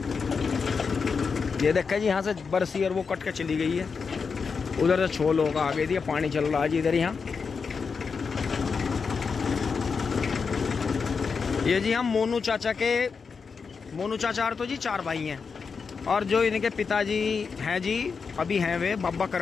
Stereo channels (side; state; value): right; quieter; 5.4 dB